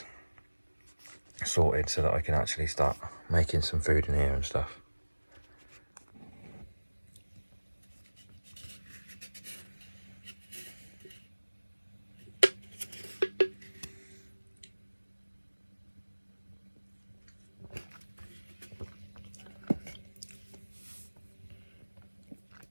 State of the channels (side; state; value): both; inverted; correlation -1.00